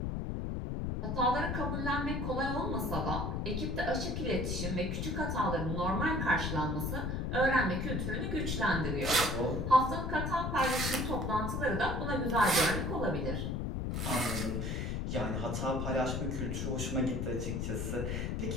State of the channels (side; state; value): left; noise; rumble, 1 dB below the sound